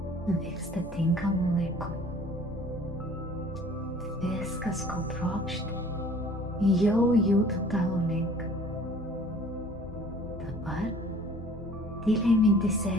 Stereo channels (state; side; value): normal; both; correlation 0.51